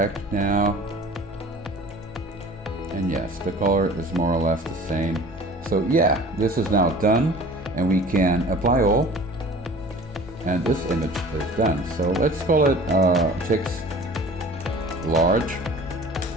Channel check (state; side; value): normal; both; correlation 0.44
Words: now, and yes, the color is more or less the same. So yeah, this is now done, and we can apply all, and this image is done. So let's call it text large,